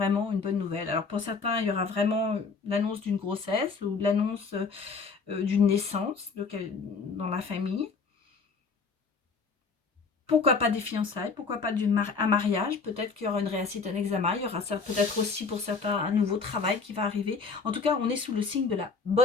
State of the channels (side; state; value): right; quieter; 4.7 dB